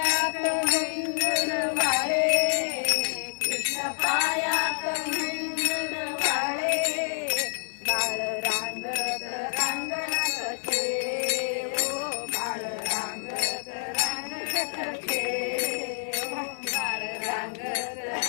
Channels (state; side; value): silent; right; digital silence